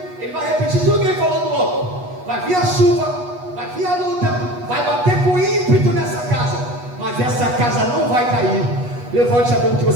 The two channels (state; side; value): late; left; 8.2 ms